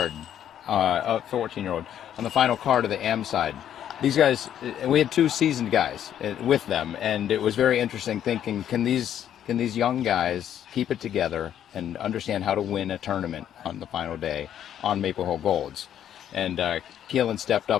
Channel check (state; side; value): quieter; right; 10.2 dB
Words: a 14-year-old on the final card of the AM side. These guys, we had 2 seasoned guys with them, and it was very interesting thinking, can these young guys keep it together and understand how to win a tournament on the final day on Maple Hill Golds? And Kealan stepped